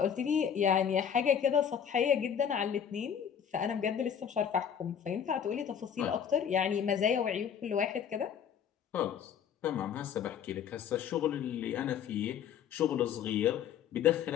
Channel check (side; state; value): right; quieter; 8.3 dB